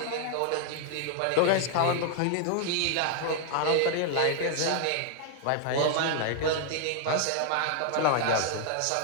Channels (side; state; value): both; different; correlation 0.00